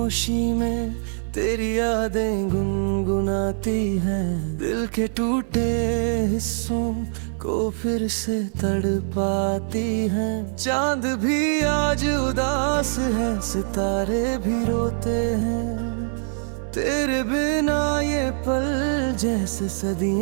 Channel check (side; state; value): left; silent; 59 dB below the other